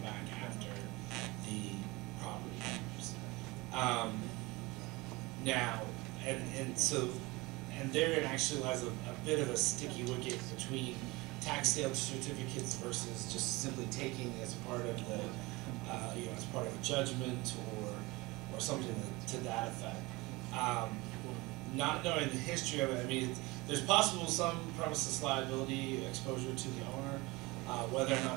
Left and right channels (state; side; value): quieter; left; 22.7 dB